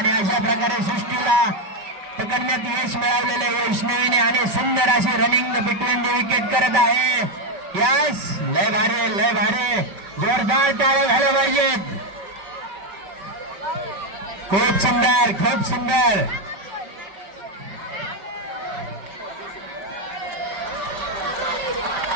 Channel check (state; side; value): late; left; 5.1 ms